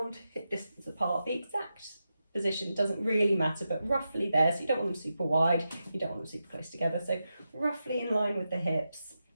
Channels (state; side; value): inverted; both; correlation -0.89